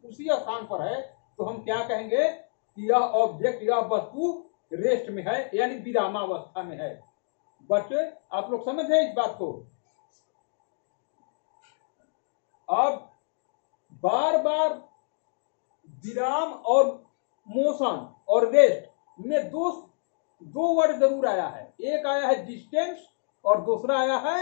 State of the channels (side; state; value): right; silent; digital silence